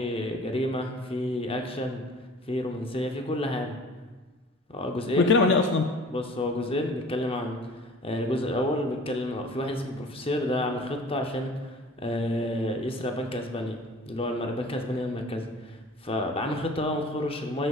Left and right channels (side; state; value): both; normal; correlation 0.45